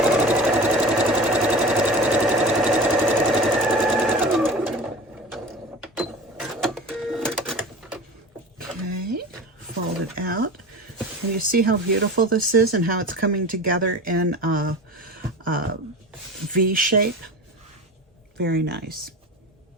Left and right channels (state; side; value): normal; both; correlation 0.34